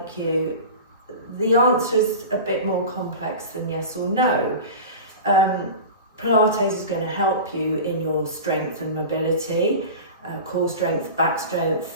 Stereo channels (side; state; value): both; inverted; correlation -0.31